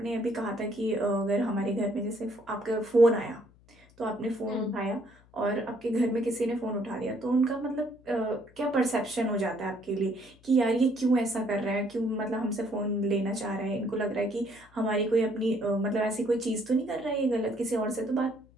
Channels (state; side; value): noise; left; hum, 28 dB below the sound